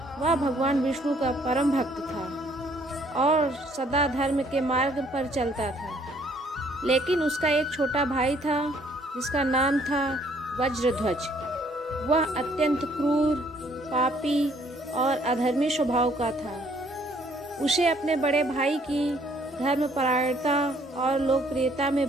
वह भगवान विष्णु का परम भक्त था और सदा धर्म के मार्ग पर चलता था। लेकिन उसका एक छोटा भाई था जिसका नाम था वज्रध्वज। वह अत्यंत क्रूर, पापी और अधर्मी स्वभाव का था। उसे अपने बड़े भाई की धर्मपरायणता और लोकप्रियता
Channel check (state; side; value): normal; both; correlation 0.63